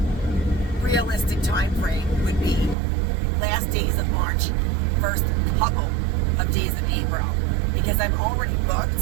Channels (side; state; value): left; drops out; at 2.8 s